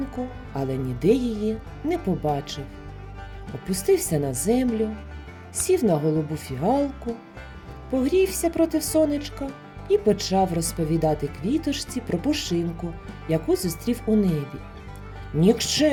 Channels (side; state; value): both; identical; correlation 1.00